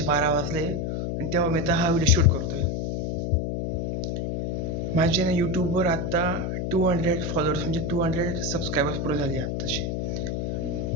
12 वाजले आणि तेव्हा मी आता हा व्हिडिओ शूट करतोय. माझे ना यूट्यूबवर आता 200 फॉलोअर्स म्हणजे 200 सबस्क्रायबर्स पूर्ण झाले आत्ताशी.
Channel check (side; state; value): left; noise; hum, 1 dB below the sound